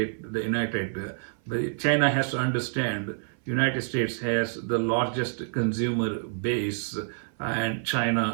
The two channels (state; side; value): silent; left; 56 dB below the other